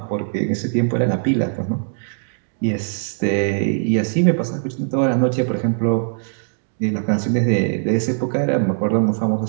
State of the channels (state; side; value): silent; left; digital silence